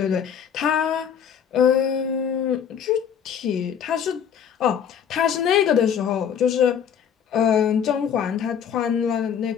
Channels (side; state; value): right; quieter; 8.1 dB